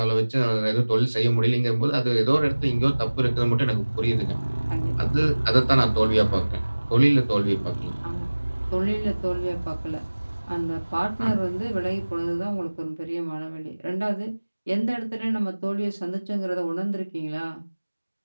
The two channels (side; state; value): both; inverted; correlation -1.00